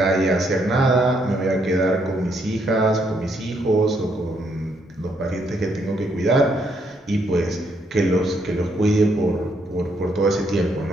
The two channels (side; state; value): both; normal; correlation 0.73